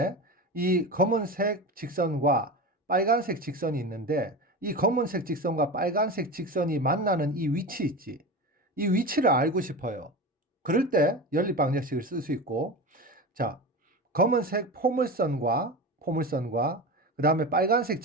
이 검은색 직선과 빨간색 직선이 있는데 이 검은색 직선과 빨간색 직선이 만나는 이 위치 있지. 이 위치를 알고 싶어요. 그럴 때 연립 방정식을 쓸 수 있고, 자, 검은색 포물선과 그다음에 빨간색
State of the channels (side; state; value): both; normal; correlation 0.26